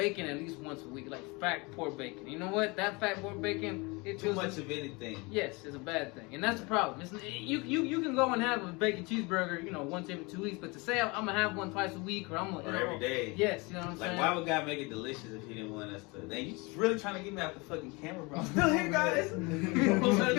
at least once a week, like fat pork bacon. You know what? That fat pork bacon, it Too feels much of anything. Yes, it's a bad thing, and that's the problem. You can go and have a bacon cheeseburger, you know, once every 2 weeks, but to say I'm gonna have one twice a week or I'm gonna, Or every day. Yes, you know what I'm Like, saying. why would God make it delicious if He didn't want us to? Then you just really trying to get me out the fucking camera, bro. I'm still here, guys. I'm trying to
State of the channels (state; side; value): quieter; right; 26.9 dB